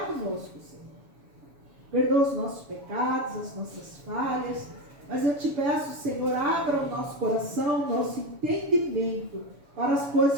conosco, Senhor. Perdoa os nossos pecados, as nossas falhas. Mas eu te peço, Senhor, abra o nosso coração, o nosso entendimento para as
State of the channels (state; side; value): late; left; 7.0 ms